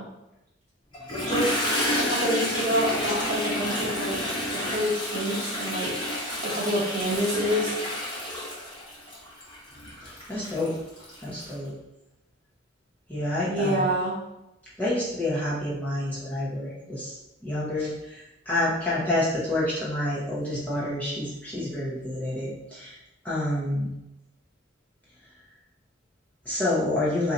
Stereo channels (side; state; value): both; normal; correlation 0.35